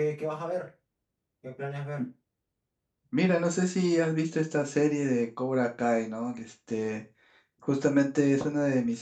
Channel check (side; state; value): both; identical; correlation 1.00